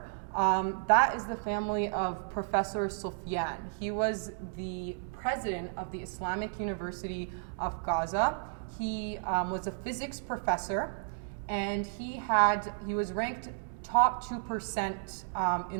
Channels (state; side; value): silent; left; digital silence